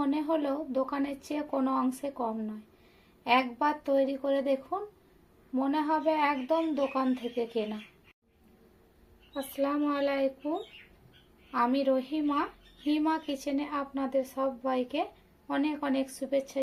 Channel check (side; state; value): both; identical; correlation 1.00